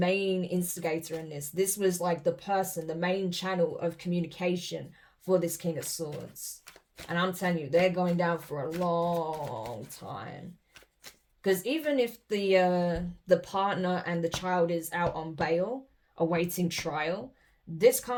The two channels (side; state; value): both; identical; correlation 1.00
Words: instigator in this. This was like the person, the main channel of communication for this King of Swords. And I'm telling you, they're going down for a long time. Because even if the partner and the child is out on bail, awaiting trial, this